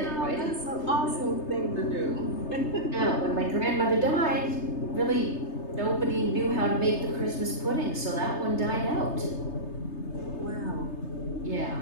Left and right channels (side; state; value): right; late; 3.3 ms